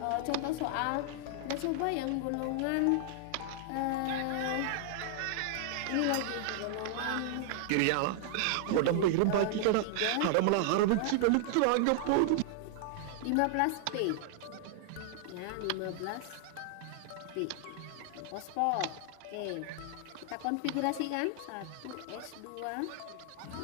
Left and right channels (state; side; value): different; both; correlation -0.01